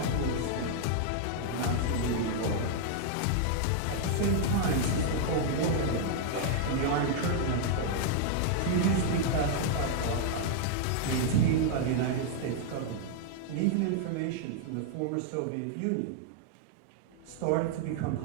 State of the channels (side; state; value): both; different; correlation -0.01